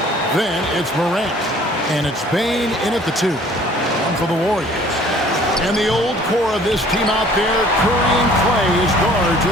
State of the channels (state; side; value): normal; both; correlation 0.53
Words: Then it's Morant. And it's Bane in at the 2. One for the Warriors. And the old core of this team out there, Curry and Clay as guards